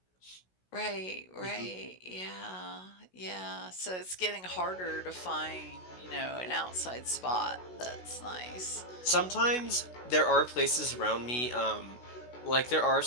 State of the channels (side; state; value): right; late; 16 ms